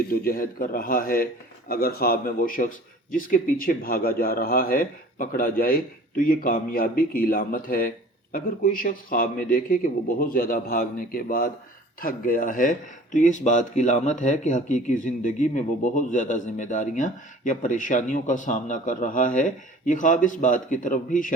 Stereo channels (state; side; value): normal; both; correlation 0.46